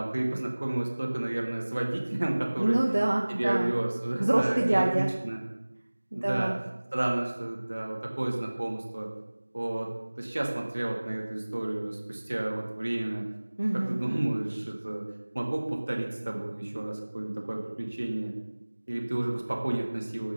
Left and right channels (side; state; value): both; inverted; correlation -1.00